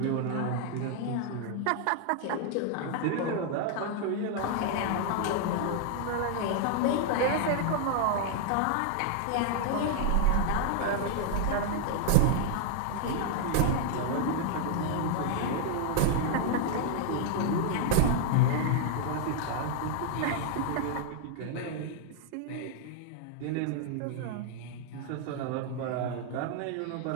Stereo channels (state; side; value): different; both; correlation 0.00